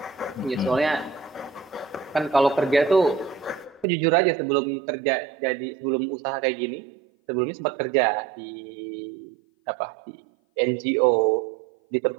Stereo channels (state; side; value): drops out; left; at 3.9 s